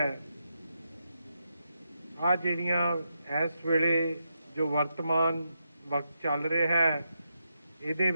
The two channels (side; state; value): both; inverted; correlation -0.84